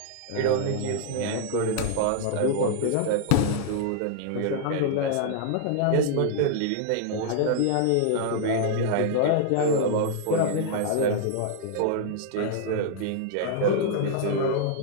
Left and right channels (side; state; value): both; different; correlation -0.01